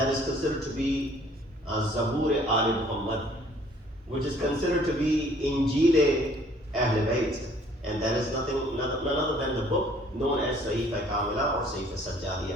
is considered to be Zabur Ali Muhammad, which is considered to be Injil Ahl-e-Bait, and that is none other than the book known as Sahifa Kamila or Sahifa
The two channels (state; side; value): normal; both; correlation 0.58